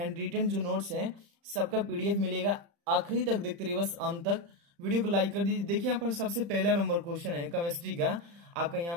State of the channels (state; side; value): late; left; 35 ms